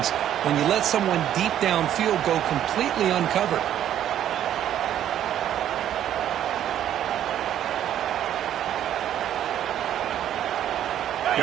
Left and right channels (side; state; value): left; quieter; 10.9 dB